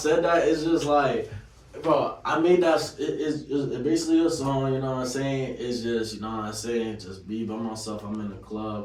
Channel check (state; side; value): identical; both; correlation 1.00